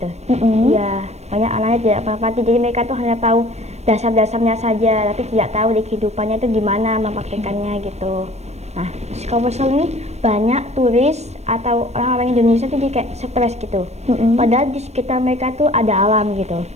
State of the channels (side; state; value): left; late; 0.31 ms